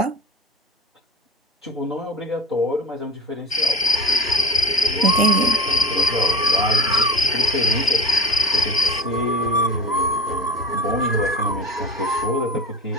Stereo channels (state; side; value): normal; both; correlation 0.37